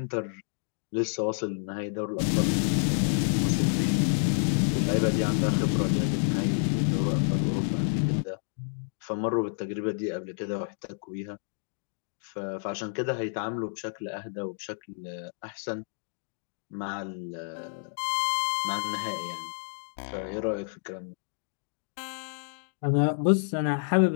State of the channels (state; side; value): silent; right; digital silence